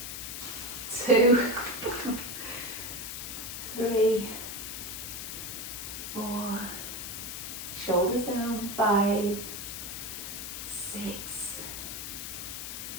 2, 3, 4, shoulders down. 5, 6,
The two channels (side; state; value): left; noise; hiss, 6 dB below the sound